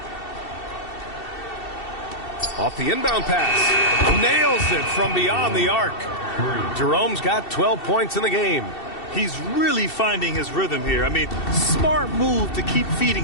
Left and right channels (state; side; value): late; right; 2.7 ms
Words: Off the inbound pass. Nails it from beyond the arc. Jerome's got 12 points in the game. He's really finding his rhythm here. I mean, smart move to keep